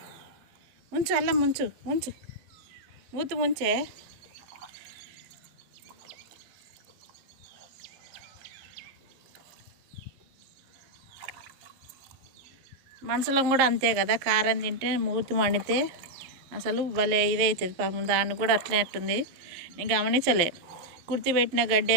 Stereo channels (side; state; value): left; late; 11 ms